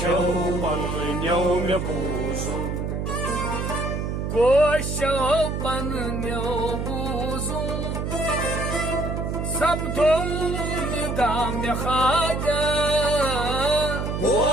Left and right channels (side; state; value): right; noise; hum, 2 dB below the sound